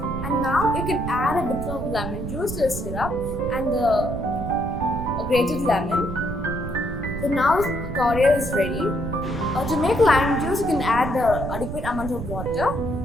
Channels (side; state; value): right; noise; rumble, 6 dB below the sound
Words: and now you can add a bit of lemon juice to the syrup and the grated lemon. So now cordial is ready. To make lime juice, you can add the adequate amount of water